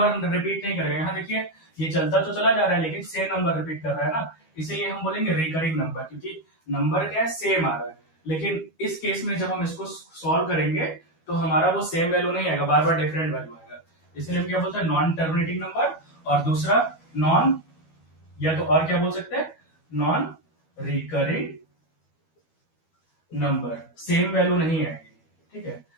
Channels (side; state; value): right; late; 12 ms